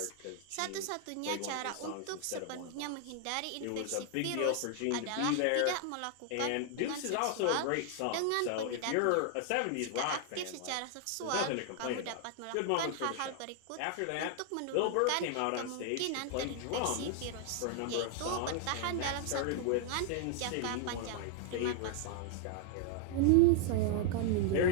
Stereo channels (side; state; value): both; different; correlation 0.00